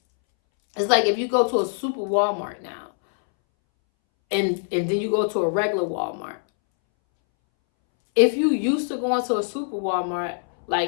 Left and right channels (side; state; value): right; silent; 63 dB below the other